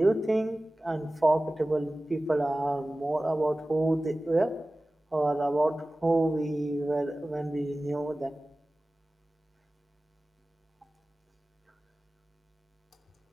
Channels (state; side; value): normal; both; correlation 0.97